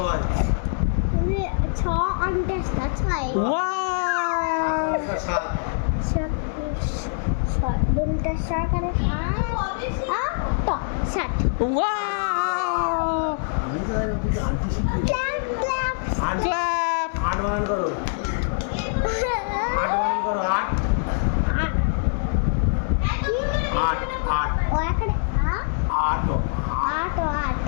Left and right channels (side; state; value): right; silent; 63 dB below the other